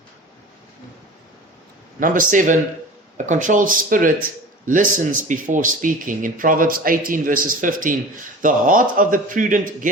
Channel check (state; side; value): normal; both; correlation 0.38